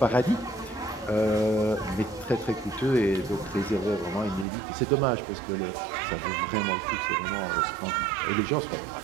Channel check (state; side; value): drops out; left; at 4.5 s